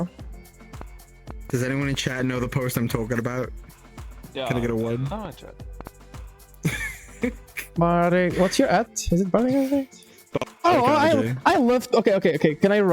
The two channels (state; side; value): identical; both; correlation 1.00